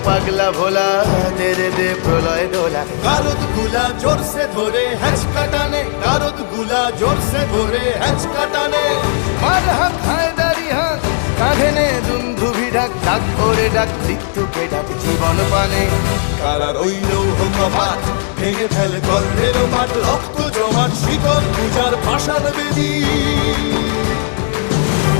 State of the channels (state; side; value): silent; right; digital silence